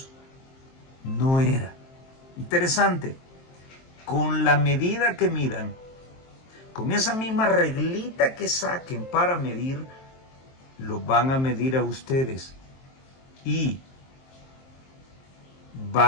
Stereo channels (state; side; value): late; right; 23 ms